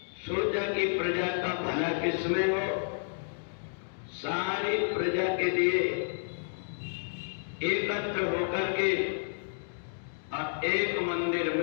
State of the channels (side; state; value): right; silent; digital silence